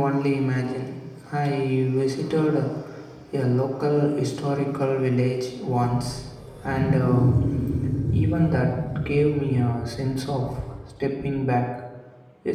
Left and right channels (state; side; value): identical; both; correlation 1.00